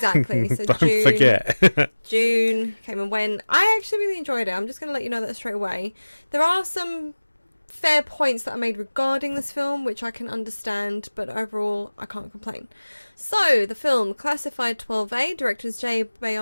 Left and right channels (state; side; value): inverted; both; correlation -1.00